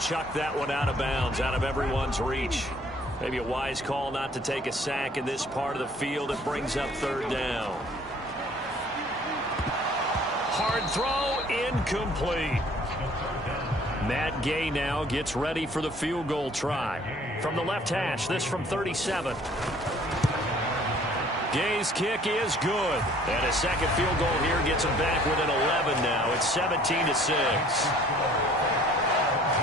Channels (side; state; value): both; normal; correlation 0.56